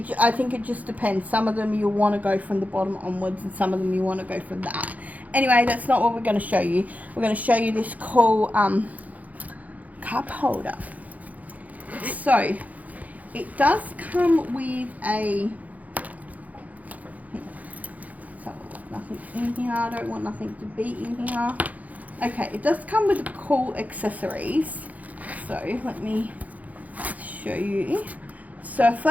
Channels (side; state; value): left; late; 0.076 ms